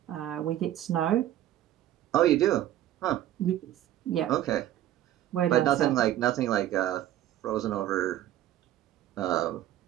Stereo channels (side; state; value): left; quieter; 12.8 dB